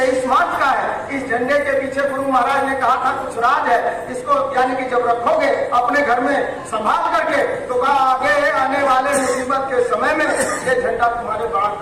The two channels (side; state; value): both; identical; correlation 1.00